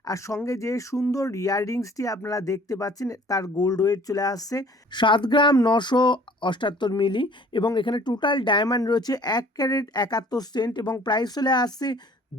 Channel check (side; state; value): both; normal; correlation 0.52